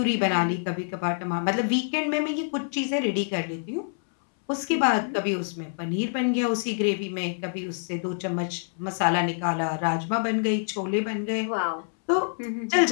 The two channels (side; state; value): right; silent; 61 dB below the other